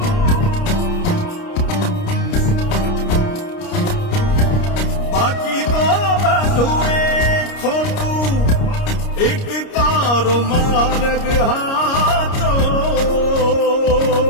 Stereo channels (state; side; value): late; right; 29 ms